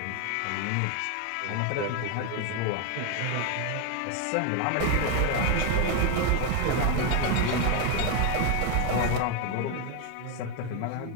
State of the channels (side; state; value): both; different; correlation 0.01